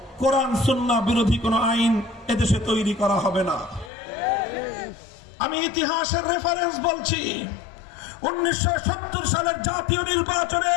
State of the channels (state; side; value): drops out; right; at 3.9 s